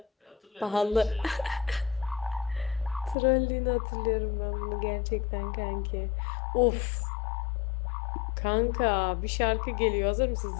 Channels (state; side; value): drops out; right; at 3.2 s